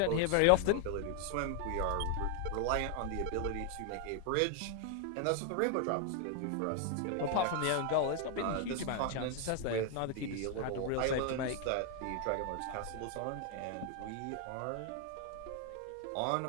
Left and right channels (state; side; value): different; both; correlation 0.00